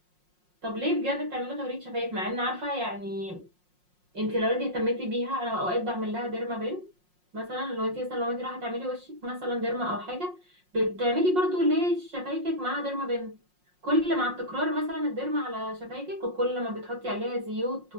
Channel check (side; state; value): left; late; 5.6 ms